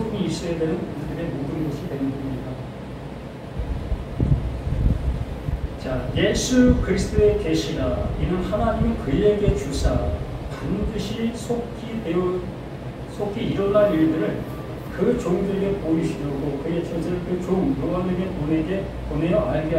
있어야 되는 우리들의 모든 것이 되는 겁니다. 자, 예수 그리스도의 계시라 이는 하나님이 그에게 주사 반드시 속히 일어날 일들을 그 종들에게 보이시려고 그의 전설 그 종 요한에게 보내어 알게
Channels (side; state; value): both; identical; correlation 1.00